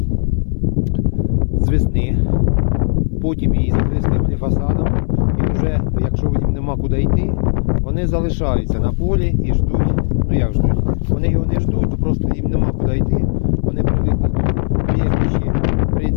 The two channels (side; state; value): right; silent; 61 dB below the other